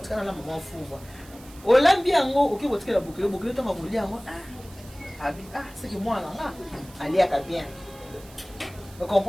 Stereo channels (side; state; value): right; noise; hiss, 22 dB below the sound